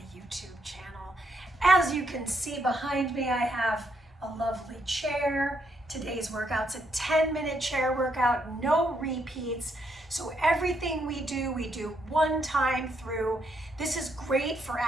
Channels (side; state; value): both; normal; correlation 0.76